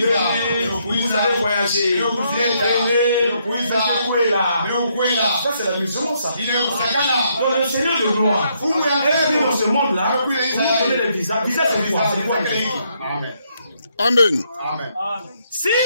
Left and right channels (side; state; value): both; inverted; correlation -0.74